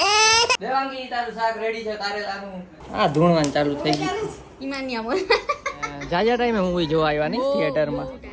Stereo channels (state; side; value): identical; both; correlation 1.00